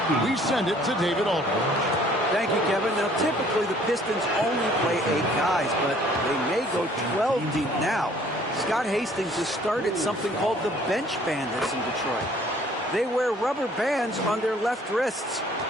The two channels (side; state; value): both; normal; correlation 0.57